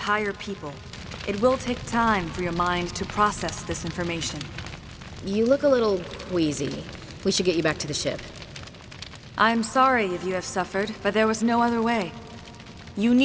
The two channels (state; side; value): identical; both; correlation 1.00